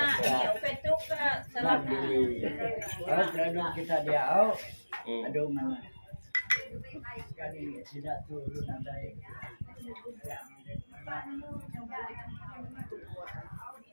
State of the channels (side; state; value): both; inverted; correlation -1.00